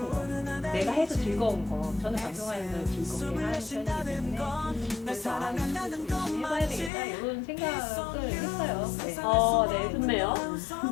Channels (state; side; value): drops out; right; at 6.9 s